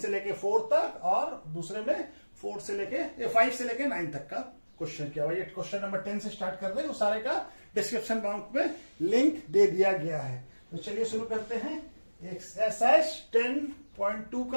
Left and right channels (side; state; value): both; inverted; correlation -1.00